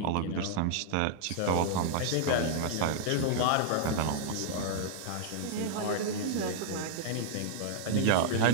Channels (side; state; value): both; different; correlation -0.01